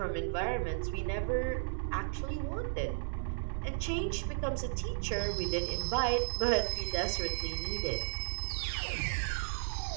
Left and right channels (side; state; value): left; silent; digital silence